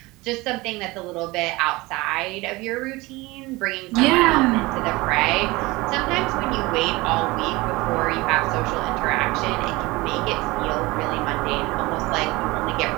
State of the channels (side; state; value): left; quieter; 21.9 dB